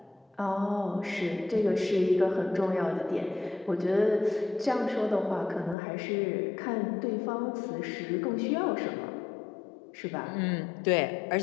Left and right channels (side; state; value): right; drops out; at 5.8 s